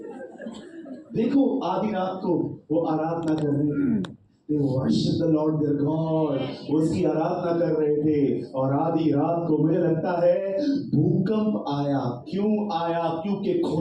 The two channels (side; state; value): both; identical; correlation 1.00